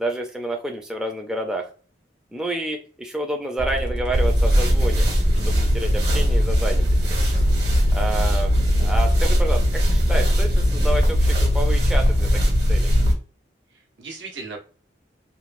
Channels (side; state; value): both; normal; correlation 0.91